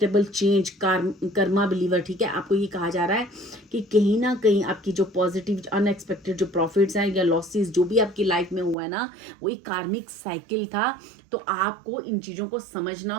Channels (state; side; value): drops out; left; at 8.8 s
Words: change, karma believer, ठीक है। आपको ये कहा जा रहा है कि कहीं ना कहीं आपकी जो पॉजिटिव अनएक्सपेक्टेड जो प्रॉफिट्स हैं या लॉसेस जो भी आपकी लाइफ में हुआ है ना, वो एक कार्मिक साइकिल था। तो आपको इन चीज़ों को समझना